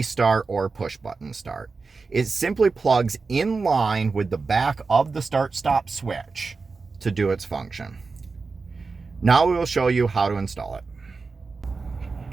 start or push button start. It simply plugs in line with the back of the start-stop switch to do its function. Now we will show you how to install it.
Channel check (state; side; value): quieter; left; 4.3 dB